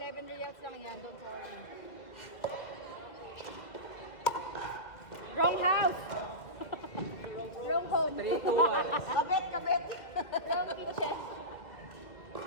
reals lang yan. Don't worry. Wrong house. Wrong home. 3 to 1. Kabet. Wrong kitchen.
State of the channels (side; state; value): right; late; 2.1 ms